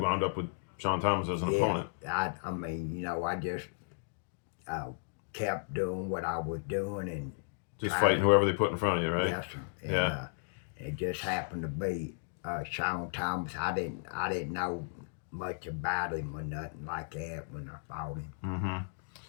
wound up with Sean Thomas as an opponent? I mean, I just kept doing what I was doing and just fighting whoever they put in front of you, right? Yes, sir. And, yeah. It just happened to be Sean Thomas. I didn't know much about him or nothing like that when I fought him. Mm-hmm.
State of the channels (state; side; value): silent; right; digital silence